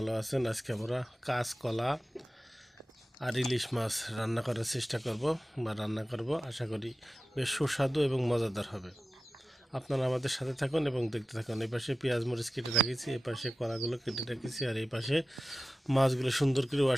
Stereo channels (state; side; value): normal; both; correlation 0.94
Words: আছেন। আজকে আমরা কাঁচকলা আর ইলিশ মাছ রান্না করার চেষ্টা করব বা রান্না করব। আশা করি বেশ সুস্বাদু এবং মজাদার হবে। আপনারা আমাদের সাথে থাকুন এবং দেখতে থাকুন। এই পাশে পেঁয়াজ মরিচ কেটে রেখেছি, এই পাশে কলাগুলো কেটে রেখেছি, আর এই পাশে মাছগুলো সুন্দর করে